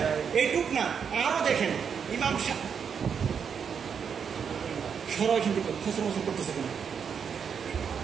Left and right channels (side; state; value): left; quieter; 7.0 dB